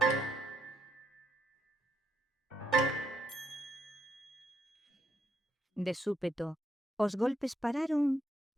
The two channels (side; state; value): both; normal; correlation 0.77